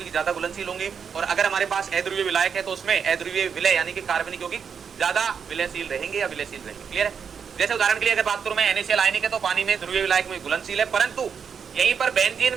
ज्यादा घुलनशील होंगे, और अगर हमारे पास अध्रुवीय विलायक है तो उसमें अध्रुवीय विलय यानी कि कार्बनिक यौगिक ज्यादा विलयशील रहेंगे या विलयशील रहेंगे। क्लियर है। जैसे उदाहरण के लिए अगर बात करूं मैं, NaCl आयनिक है तो पानी में ध्रुवीय विलायक में घुलनशील है, परंतु यहीं पर बेंजीन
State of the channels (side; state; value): left; quieter; 6.7 dB